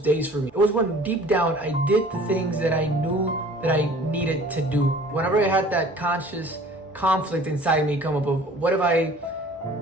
for me. It was when deep down I did the things that I knew that I needed to do. Whenever I had that conscious conflict inside me come up of, what if I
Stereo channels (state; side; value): normal; both; correlation 0.49